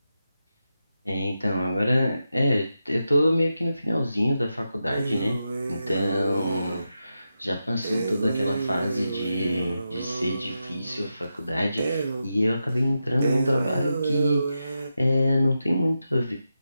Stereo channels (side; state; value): both; inverted; correlation -0.88